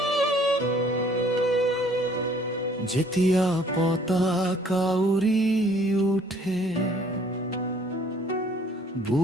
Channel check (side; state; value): both; normal; correlation 0.59